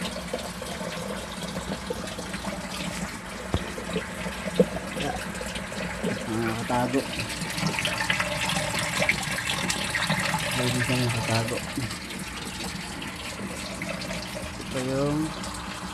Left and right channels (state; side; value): identical; both; correlation 1.00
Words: Nakatago. Pwede siya nakatago. Ito yung